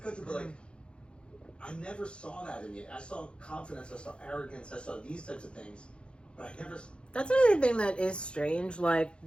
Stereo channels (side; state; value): right; late; 0.056 ms